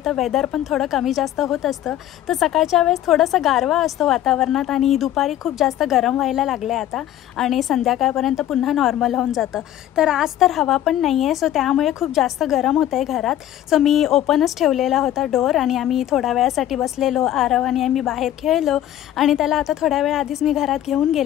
वेदर पण थोडं कमी जास्त होत असतं। तर सकाळच्या वेळेस थोडंसं गारवा असतो वातावरणात आणि दुपारी खूप जास्त गरम व्हायला लागले आता आणि संध्याकाळपर्यंत पुन्हा नॉर्मल होऊन जातं। तर आज तर हवा पण नाही आहे, सो त्यामुळे खूप जास्त गरम होतं आहे घरात। सो मी ओपनच ठेवलेला होता डोअर आणि आम्ही थोड्या वेळासाठी बसलेलो आरव आणि आम्ही बाहेर खेळलो आणि त्याला आता थोड्या वेळ आधीच मी घरात घेऊन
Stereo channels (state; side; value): quieter; right; 12.4 dB